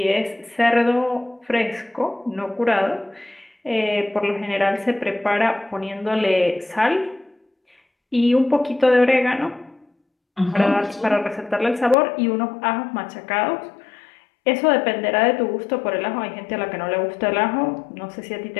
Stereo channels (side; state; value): right; drops out; at 12.0 s